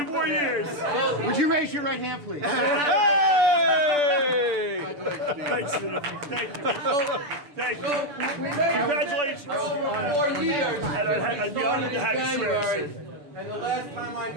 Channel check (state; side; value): late; left; 6.9 ms